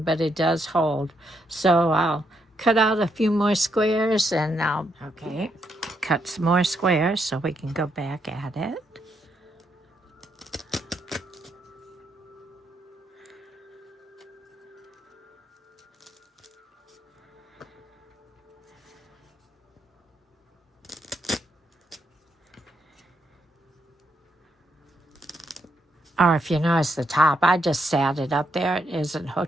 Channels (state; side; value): normal; both; correlation 0.78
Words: but it does hold. So I'll cut out a few more squares and I'll, okay, cut some more squares so we can go back at it. Or if you notice the top, I just sat it up there. It isn't